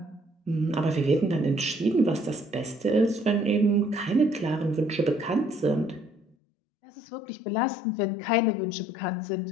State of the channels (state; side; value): drops out; right; at 6.4 s